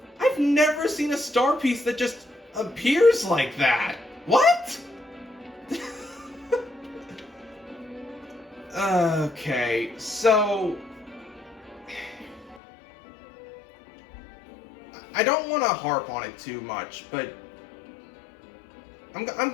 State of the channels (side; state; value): right; drops out; at 12.6 s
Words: I've never seen a star piece that just appears like that. What? Okay, so... I don't want to harp on it too much, but... I'm